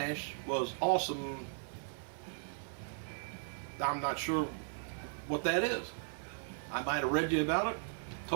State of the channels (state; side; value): silent; left; digital silence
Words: was awesome. I'm not sure what that is. I might have read you about it,